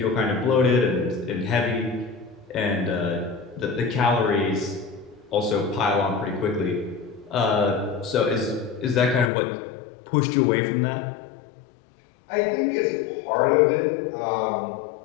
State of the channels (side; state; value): right; drops out; at 9.3 s